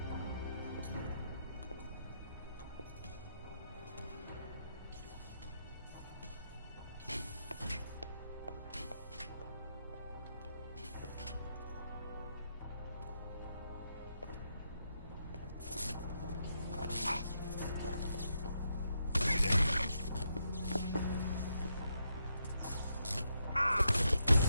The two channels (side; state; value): both; inverted; correlation -0.81